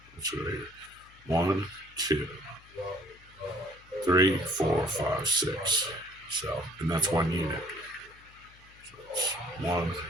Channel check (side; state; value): left; noise; hum, 25 dB below the sound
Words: It's right here. 1, 2, 3, 4, 5, 6. So, and that's 1 unit. So it's 1,